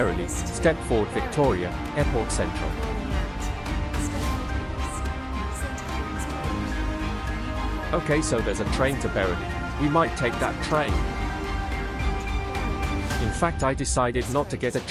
Stepford Victoria, Airport Central. Okay, so there's a train to 𝓢𝓸𝓬. We might take that train. In fact, I decided not to get a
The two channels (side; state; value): both; identical; correlation 1.00